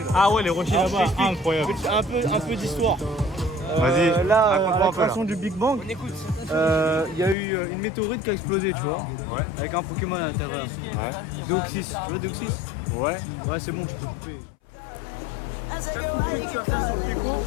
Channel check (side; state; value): right; drops out; at 7.4 s